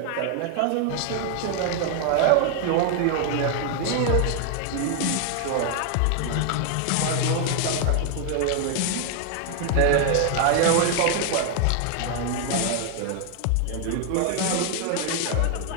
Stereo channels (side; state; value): both; different; correlation 0.00